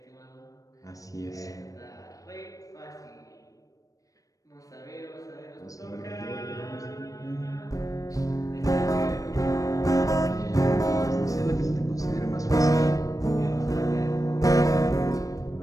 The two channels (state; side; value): late; right; 0.16 ms